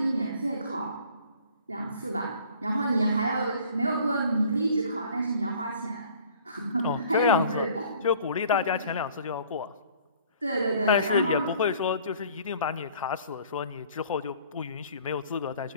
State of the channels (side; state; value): both; inverted; correlation -0.52